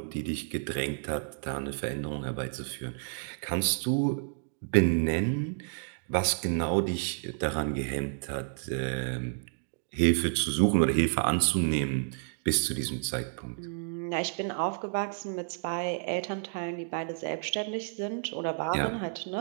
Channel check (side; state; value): left; silent; digital silence